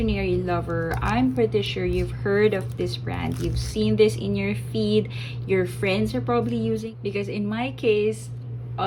lover, I'm pretty sure you've heard of this brand. You've seen this in your feed. Your friends are probably using, because in my case,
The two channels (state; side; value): identical; both; correlation 1.00